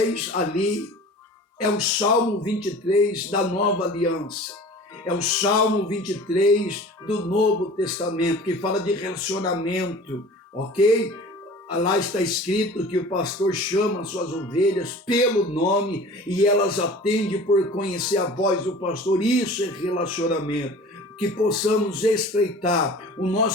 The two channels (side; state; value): both; normal; correlation 0.42